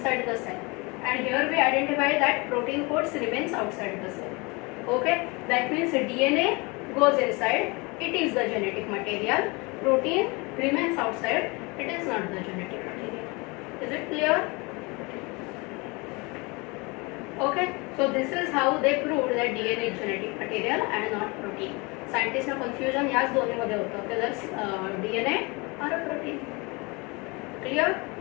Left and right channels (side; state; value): right; quieter; 27.3 dB